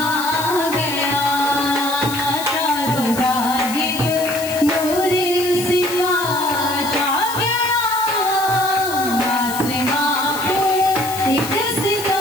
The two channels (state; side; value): noise; left; hiss, 10 dB below the sound